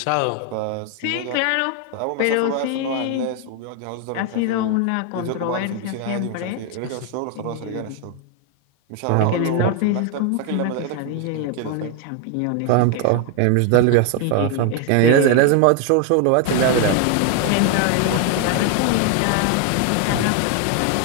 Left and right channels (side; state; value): both; different; correlation 0.01